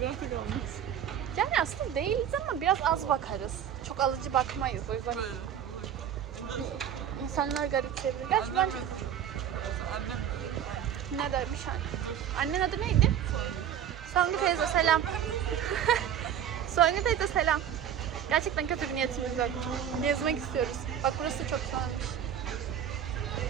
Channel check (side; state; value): left; quieter; 9.5 dB